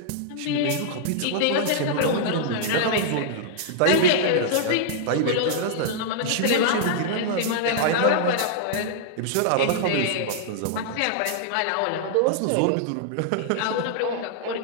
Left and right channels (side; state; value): both; different; correlation -0.01